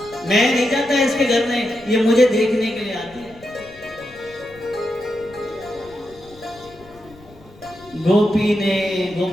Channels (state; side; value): noise; left; rumble, 24 dB below the sound